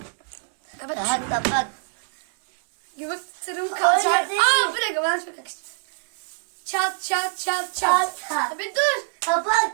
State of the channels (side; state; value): left; silent; digital silence